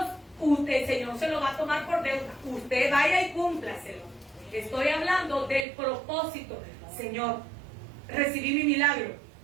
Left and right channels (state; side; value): drops out; left; at 5.7 s